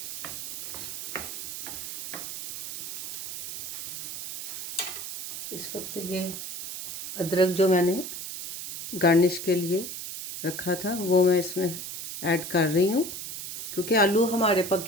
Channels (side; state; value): right; noise; hiss, 6 dB below the sound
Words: इस वक्त ये अदरक जो मैंने गार्निश के लिए रखा था वो मैं इसमें ऐड कर रही हूँ, क्योंकि आलू हमारे